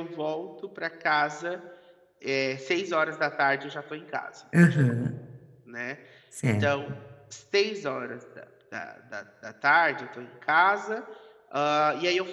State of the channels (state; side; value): identical; both; correlation 1.00